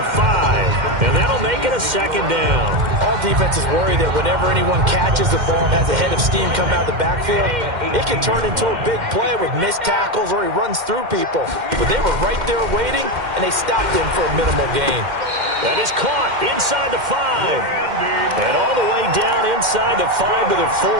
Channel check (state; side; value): late; left; 2.1 ms